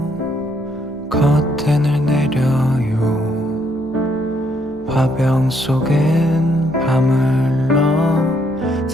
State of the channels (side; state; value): both; normal; correlation 0.72